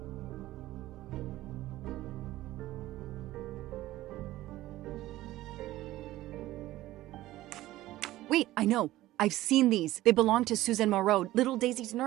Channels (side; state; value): left; quieter; 16.0 dB